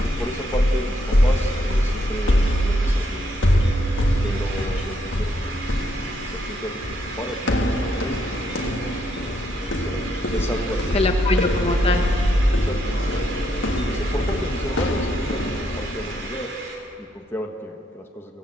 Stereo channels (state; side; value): normal; both; correlation 0.77